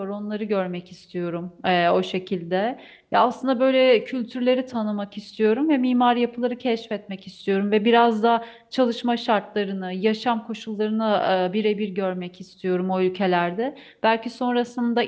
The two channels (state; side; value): identical; both; correlation 1.00